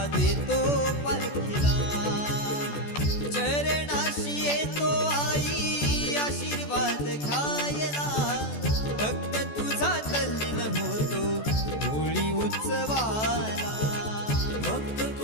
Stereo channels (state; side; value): late; right; 14 ms